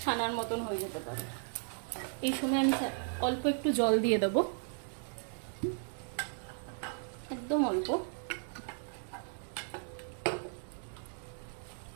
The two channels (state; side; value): silent; left; 54 dB below the other